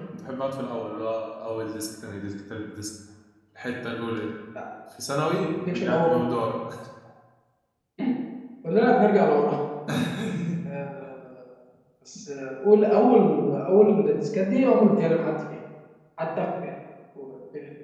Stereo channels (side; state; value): both; identical; correlation 1.00